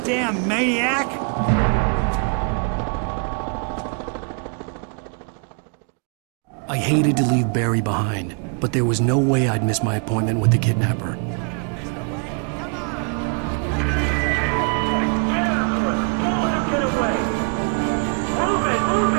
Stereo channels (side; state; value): left; quieter; 39.8 dB